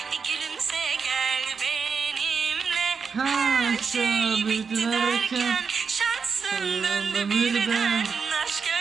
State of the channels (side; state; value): left; quieter; 5.6 dB